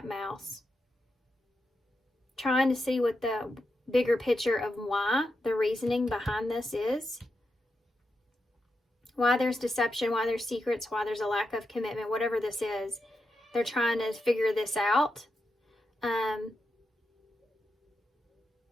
mouse. Trying to see what the bigger picture of why, the reasoning behind this is. Why there's deception, why there's secrets, why there's a lack of commitment, whatever this is. They're trying to figure this out.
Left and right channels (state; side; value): normal; both; correlation 0.87